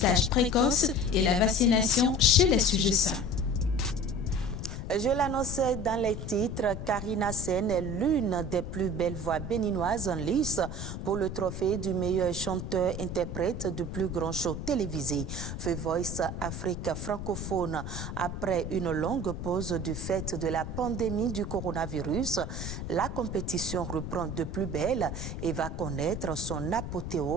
précoce et la vaccination chez les sujets sains. Je l'annonçais dans les titres, Karina Sen est l'une des plus belles voix béninoises en lice pour le trophée du meilleur chanteur-interprète du plus grand show télévisé, The Voice Afrique francophone. Après une longue pause du fait de la pandémie du coronavirus, la compétition reprend de plus belle et va connaître son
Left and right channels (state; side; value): noise; left; rumble, 6 dB below the sound